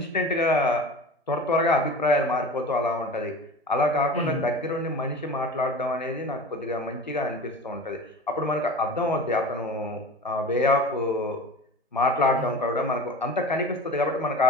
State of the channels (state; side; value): normal; both; correlation 0.35